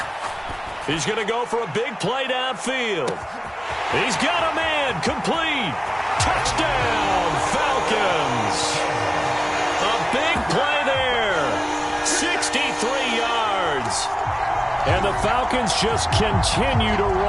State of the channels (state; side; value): identical; both; correlation 1.00